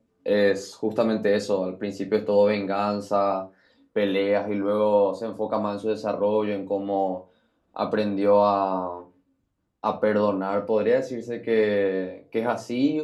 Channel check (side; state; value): both; identical; correlation 1.00